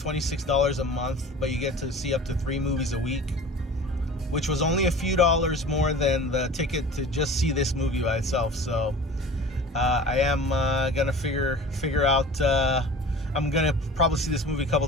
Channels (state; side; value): normal; both; correlation 0.40